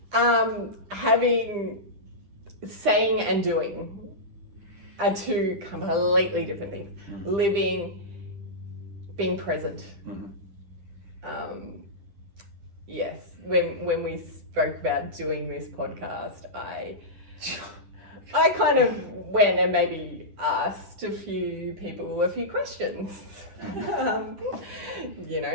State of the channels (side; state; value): left; late; 10 ms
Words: Saying and doing are 2 completely different things. Living, being present. Yes. When we spoke about doing this podcast, I kind of went and maybe asked a few people a few questions.